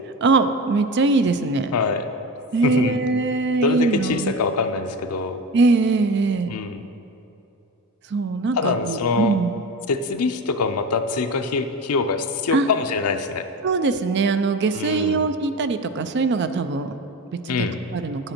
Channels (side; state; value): both; normal; correlation 0.27